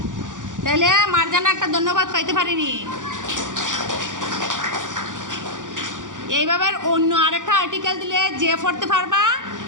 তাহলে মার্জানা একটা ধন্যবাদ পাইতে পারিনি। এইভাবে অন্য আরেকটা আর্টিকেল দিলে যে পড়তে পারবা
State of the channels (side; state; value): left; late; 0.87 ms